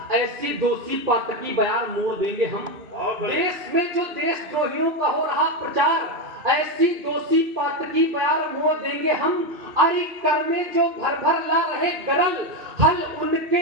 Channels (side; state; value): left; late; 3.0 ms